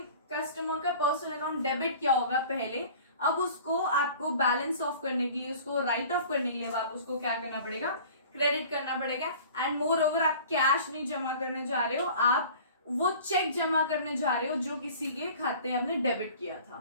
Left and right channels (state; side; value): inverted; both; correlation -0.45